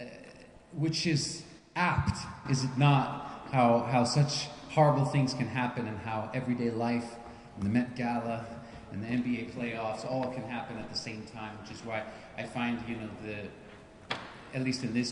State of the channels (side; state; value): both; identical; correlation 1.00